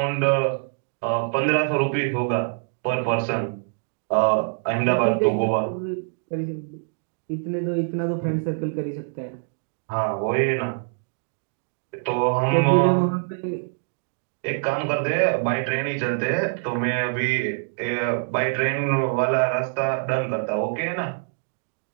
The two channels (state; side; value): silent; left; digital silence